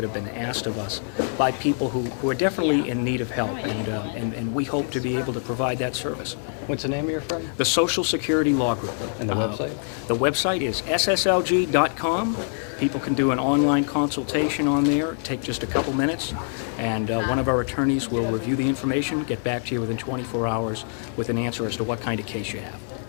have been asked of us by people who are definitely in need of help, and we hope to be able to provide that service. What's the name of your firm? The Social Security Law Group. And the website? The website is sslg.com. People can do an online consultation on there, take just a couple minutes, and one of our attorneys will review the information, get back to you within 24 hours with an answer as to what kind of case you have.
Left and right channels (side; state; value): right; silent; 62 dB below the other